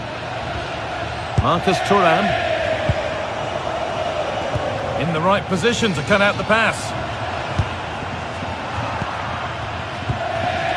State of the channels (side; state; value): both; identical; correlation 1.00